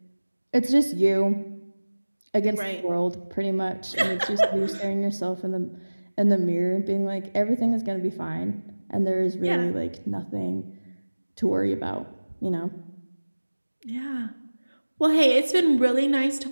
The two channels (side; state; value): both; inverted; correlation -1.00